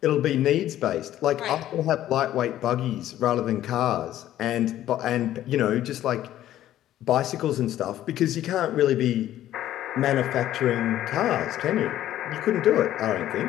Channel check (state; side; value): quieter; right; 12.8 dB